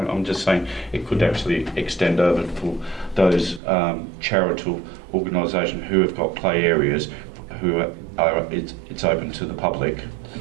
just saying it could actually extend over for those charitable organisations who have got play areas, it's open to the public,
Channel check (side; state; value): left; drops out; at 3.6 s